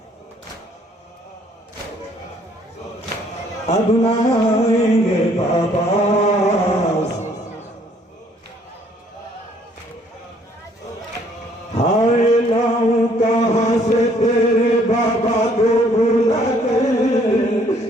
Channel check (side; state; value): both; normal; correlation 0.63